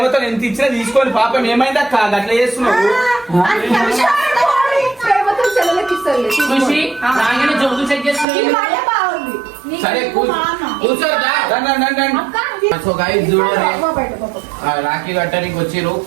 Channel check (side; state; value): left; drops out; at 8.2 s